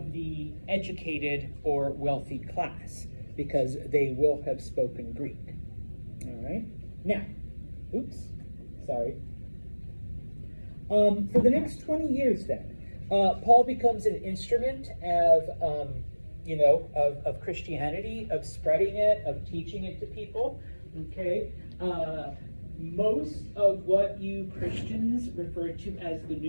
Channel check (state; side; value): inverted; both; correlation -1.00